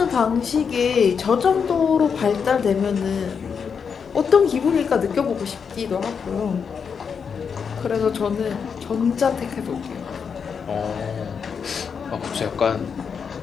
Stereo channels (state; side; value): quieter; right; 6.4 dB